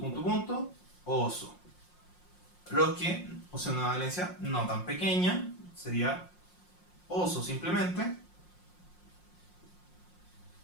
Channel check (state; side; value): late; right; 5.6 ms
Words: oso. Los que poseen una valencia no tan pequeña, sería oso simplemente.